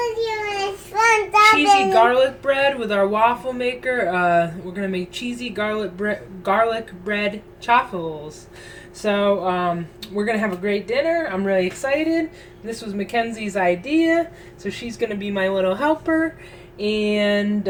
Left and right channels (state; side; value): identical; both; correlation 1.00